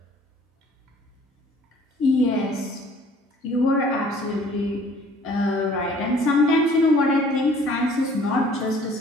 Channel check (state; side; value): normal; both; correlation 0.54